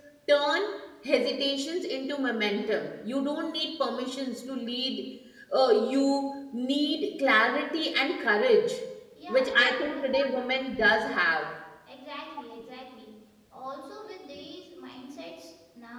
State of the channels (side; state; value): both; identical; correlation 1.00